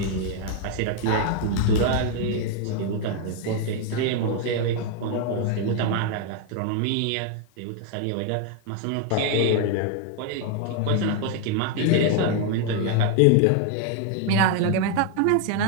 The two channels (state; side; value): different; both; correlation 0.00